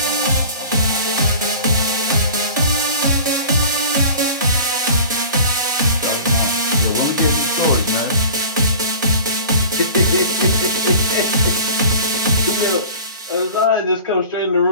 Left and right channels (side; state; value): both; inverted; correlation -0.40